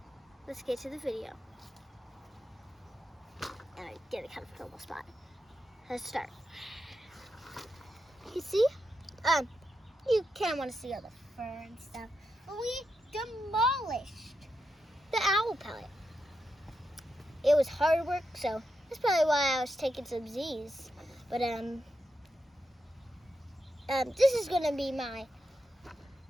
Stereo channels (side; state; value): both; normal; correlation 0.86